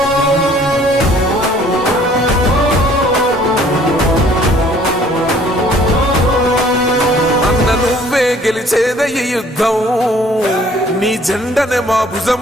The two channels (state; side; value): normal; both; correlation 0.57